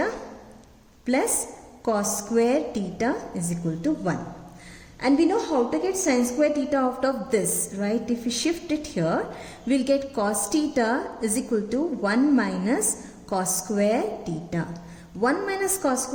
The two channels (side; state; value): both; identical; correlation 1.00